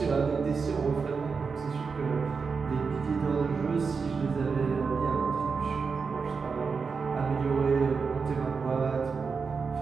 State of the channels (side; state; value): left; quieter; 5.1 dB